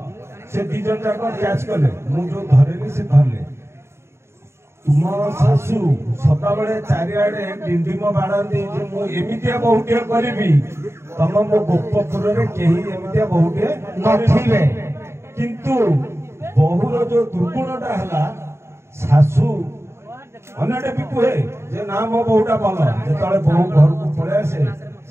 से दीजन जाक कैच कले मु जो धरेली से धरले तुम सासू सदा बेले चारिआडे डिंडिम बाड़ाती जो मु एमितिया बहुटे करिबी तम मो गोपपुर रे केही एमितिया बहुटे नथिबे किंतु बहुर जो दुर्गुणटा हला सासू अनेटे भी कुहे जे ना मो बहुटा भल जेतले बहु घर को पळे आसे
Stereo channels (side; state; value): left; late; 0.13 ms